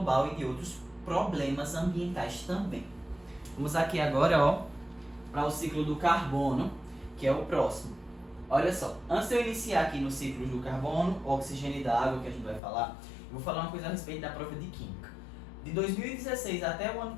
e de outros problemas ambientais também. Vamos aqui agora, ó, para o ciclo do carbono, que é o próximo. Olha só, antes de eu iniciar aqui no ciclo do carbono, oxigênio e da água, que a gente vai falar, eu vou falar uma coisa a respeito da prova de química. De 2016 até o ano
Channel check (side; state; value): right; drops out; at 12.6 s